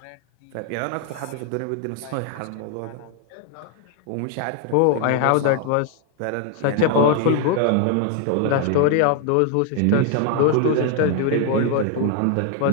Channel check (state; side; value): different; both; correlation 0.01